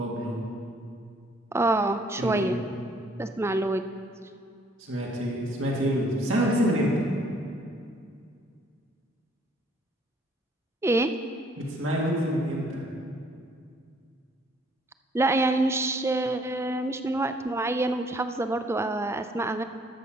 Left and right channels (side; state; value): both; normal; correlation 0.62